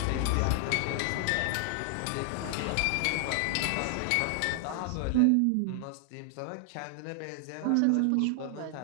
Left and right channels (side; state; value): both; different; correlation 0.00